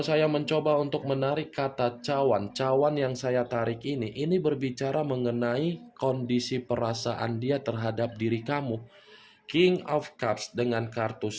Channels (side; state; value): both; identical; correlation 1.00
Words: mencoba untuk menarik kata cawan, cawan yang saya tarik ini berbicara mengenai kondisi perasaan dia terhadap diri kamu. King of Cups dengan kartu